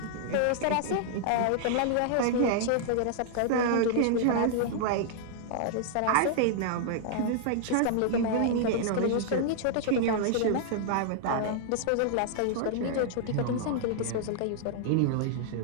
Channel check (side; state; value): both; different; correlation -0.01